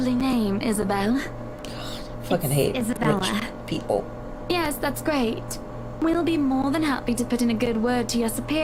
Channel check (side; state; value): both; identical; correlation 1.00